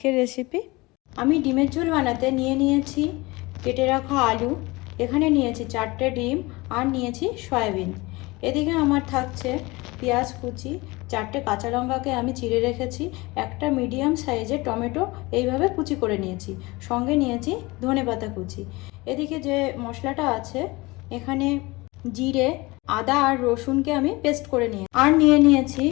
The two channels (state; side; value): quieter; right; 22.7 dB